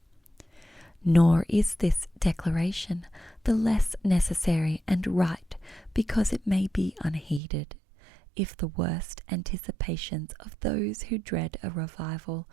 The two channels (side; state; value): left; drops out; at 7.4 s